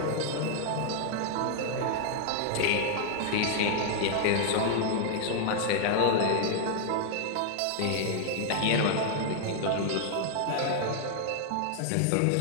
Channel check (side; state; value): both; different; correlation 0.00